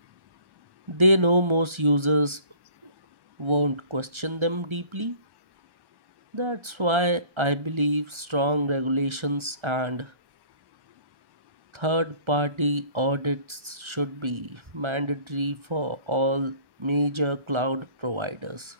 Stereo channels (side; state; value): left; late; 1.3 ms